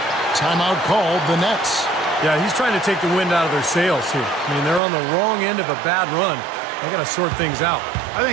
Timeout called, the Nets. Yeah, he's trying to take the wind out of their sails here. I mean, they're on the wrong end of a bad run. They got to sort things out. I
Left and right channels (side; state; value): left; drops out; at 4.8 s